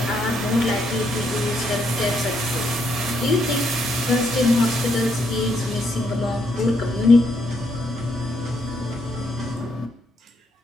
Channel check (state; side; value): normal; both; correlation 0.75